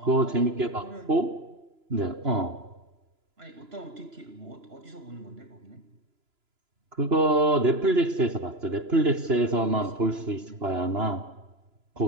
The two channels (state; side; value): late; left; 2.9 ms